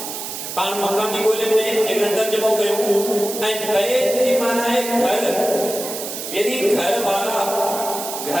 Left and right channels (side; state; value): right; noise; hiss, 7 dB below the sound